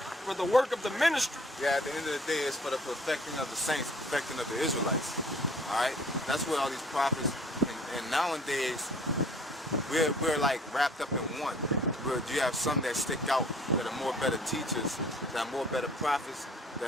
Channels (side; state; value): both; normal; correlation 0.54